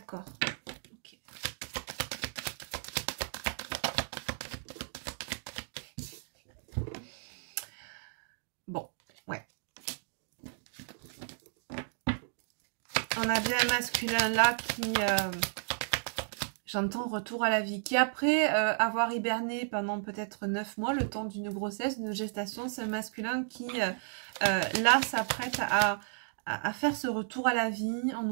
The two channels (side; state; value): left; silent; digital silence